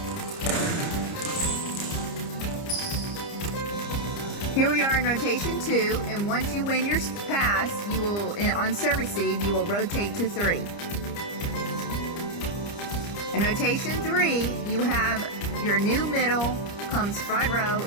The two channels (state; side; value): late; right; 30 ms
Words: Here we are in rotation 2, and once you win your pass, you will, on serve receive, you will rotate to 3. In rotation 3, you have your new middle comes front row